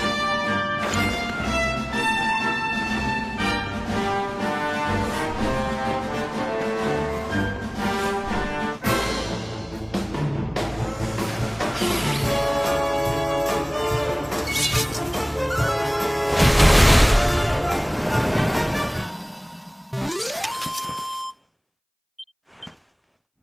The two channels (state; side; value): identical; both; correlation 1.00